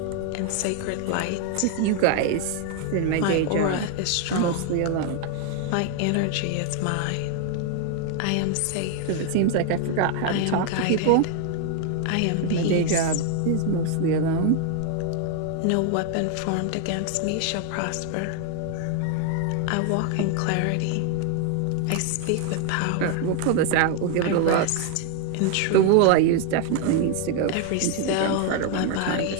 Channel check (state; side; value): different; both; correlation 0.00